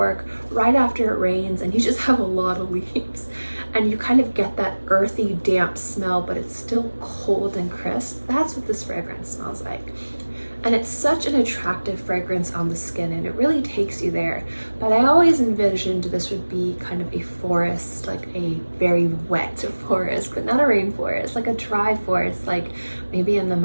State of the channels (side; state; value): both; inverted; correlation -1.00